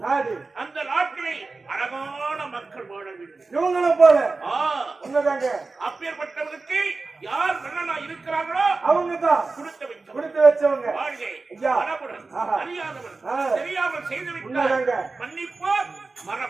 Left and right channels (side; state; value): left; quieter; 3.8 dB